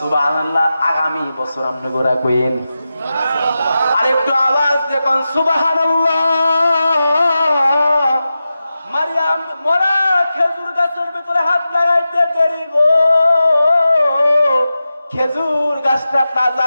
আগামী বছর আপনি গোরা কইন আরেকটু আওয়াজ দেখুন, সুবহানাল্লাহ। মারিয়াম মরা খেজুর গাছের ভিতরে হাত লাগাইতে দেরি গো, খেজুর গাছটা তাজা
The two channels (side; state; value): both; inverted; correlation -0.93